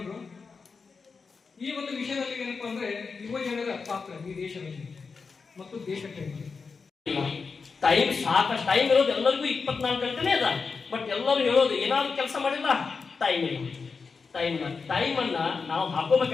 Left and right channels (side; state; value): right; quieter; 4.9 dB